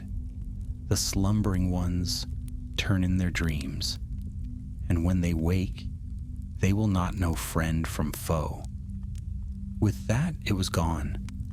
The slumbering ones turn in their dreams, and when they wake, they will not know friend from foe. With that, it was gone.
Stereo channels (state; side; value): identical; both; correlation 1.00